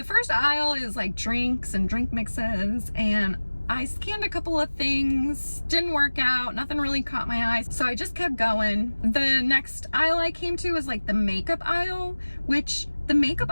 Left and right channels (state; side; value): inverted; both; correlation -1.00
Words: first aisle is like drinks and drink mixes, and I scanned a couple of things, didn't work out, nothing really caught my eye, so I just kept going. The next aisle I came to was like the makeup aisle, which the makeup